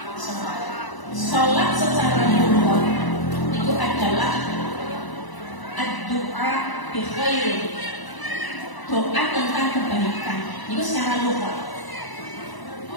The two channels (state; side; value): late; right; 1.0 ms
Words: sholat. Sholat secara lughah itu adalah ad-du'a bi khair, doa tentang kebaikan. Itu secara lughah.